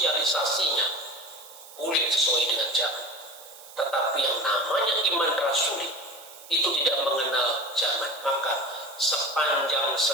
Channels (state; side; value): noise; right; hiss, 19 dB below the sound